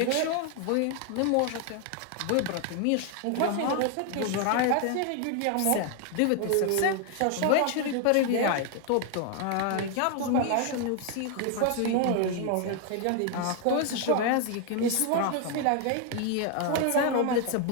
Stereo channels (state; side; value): different; both; correlation 0.00